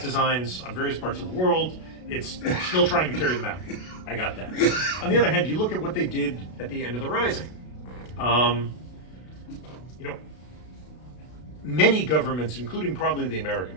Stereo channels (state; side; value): late; right; 32 ms